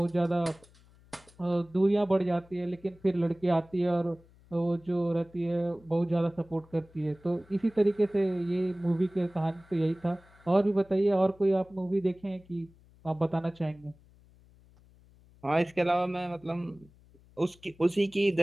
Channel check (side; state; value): left; noise; hum, 27 dB below the sound